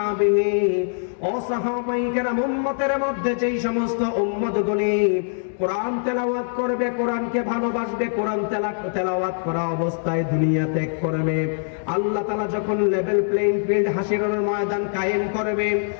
ও সাহাবায়ে কেরাম, উম্মতের মধ্যে যেই সমস্ত উম্মতগুলি কোরআন তেলাওয়াত করবে, কোরআনকে ভালোবাসবে, কোরআন তেলাওয়াত করা অবস্থায় দুনিয়া ত্যাগ করবে, আল্লাহ তাআলা যখন লেভেল প্লেইং ফিল্ড হাসরের ময়দান কায়েম করবে,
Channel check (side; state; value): right; silent; digital silence